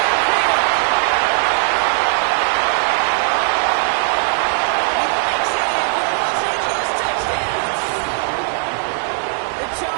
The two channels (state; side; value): silent; left; 60 dB below the other